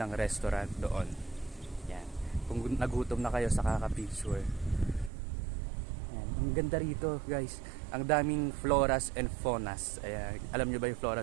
restaurant doon. Yan. Kung nagutom na kayo sa kaka-picture. Yan. Ang ganda rito, guys. Ang daming floras and faunas. Ayan. Alam nyo ba yung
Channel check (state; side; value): drops out; left; at 5.1 s